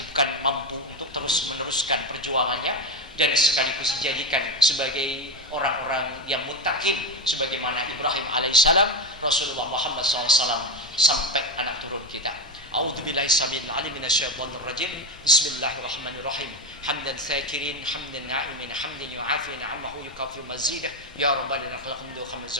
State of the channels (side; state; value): both; normal; correlation 0.15